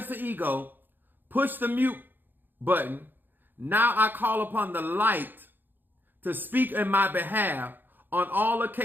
the ego, push the mute button. Now I call upon the light to speak in my behalf on all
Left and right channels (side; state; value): left; late; 0.092 ms